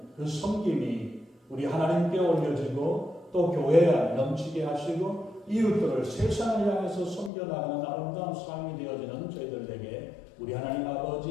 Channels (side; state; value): right; drops out; at 7.3 s